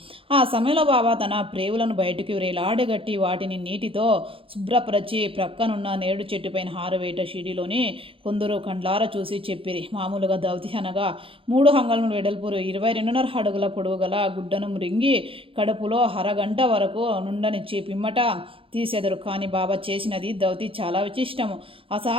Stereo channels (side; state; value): left; late; 0.26 ms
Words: ఆ సమయంలో బాబా తన ప్రేవులను బయటికి వేలాడగట్టి వాటిని నీటితో శుభ్రపరచి ప్రక్కనున్న నేడు చెట్టుపైన హారవేట షిడిలోని కొందరు కండ్లార చూసి చెప్పిరి. మామూలుగా దౌతి అనగా 3 అంగుళముల వెడల్పు 22.5 అడుగుల పొడవు గల గుడ్డను మృంగి కడుపులో అరగంట వరకు నుండనిచ్చి పిమ్మట తీసెదరు. కానీ బాబా చేసినది దౌతి చాలా విశిష్టము,